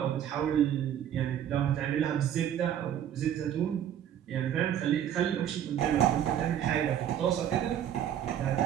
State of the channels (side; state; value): left; quieter; 10.2 dB